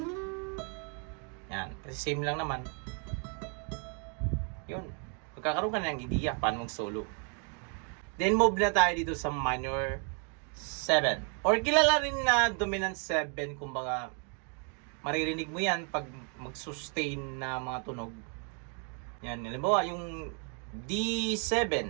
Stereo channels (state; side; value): quieter; left; 39.6 dB